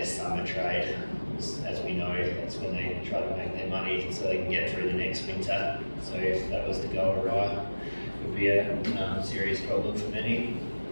summer trade. As we know, that's when they try to make their money so they can get through the next winter. So if that was to go awry, it would be a serious problem for many.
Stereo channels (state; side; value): inverted; both; correlation -1.00